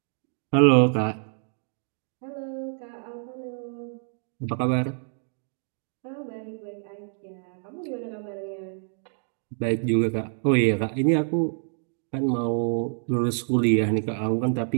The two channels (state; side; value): silent; left; digital silence